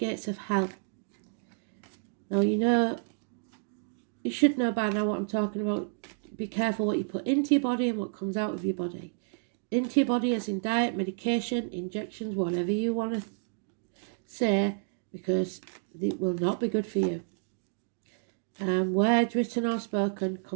of hell. Now, you should know by now what I'm talking about. Be careful what you put into your body and what comes out of your body. Into your body as in diet, medication, injections, whatever you want to say, because it will not be good for you. Words written or spoken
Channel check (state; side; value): silent; left; digital silence